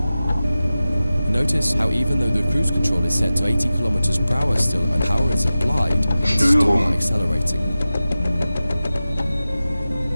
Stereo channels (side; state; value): both; inverted; correlation -0.95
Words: Notice how even though the cruise control is set to 80 kilometers per hour still and power is applied, it's still not accelerating.